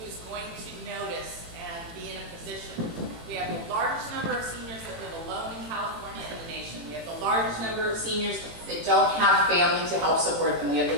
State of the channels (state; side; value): late; left; 18 ms